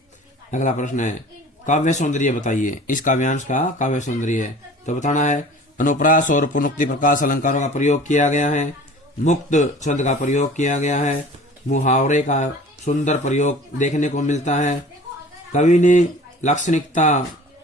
अगला प्रश्न है, काव्य सौंदर्य बताइए। इस काव्यांश का काव्य सौंदर्य है तो बताना है, अनुप्रास और पुनरुक्ति प्रकाश अलंकारों का प्रयोग किया गया है, मुक्त छंद का प्रयोग किया गया है, मुहावरे का सुंदर प्रयोग देखने को मिलता है, कवि ने लाक्षणिकता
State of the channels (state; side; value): normal; both; correlation 0.44